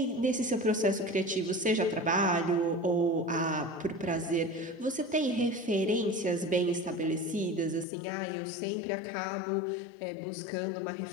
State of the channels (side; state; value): right; drops out; at 7.9 s